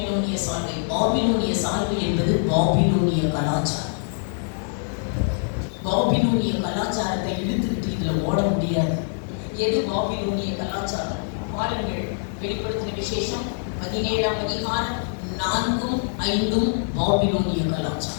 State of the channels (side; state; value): right; silent; digital silence